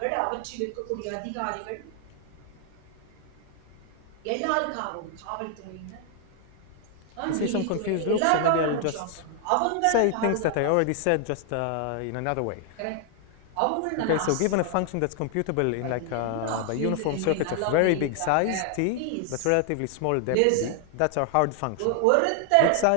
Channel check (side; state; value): both; different; correlation 0.00